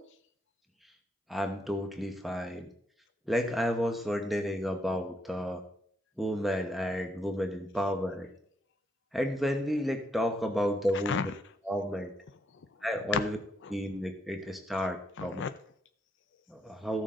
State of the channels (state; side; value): normal; both; correlation 0.76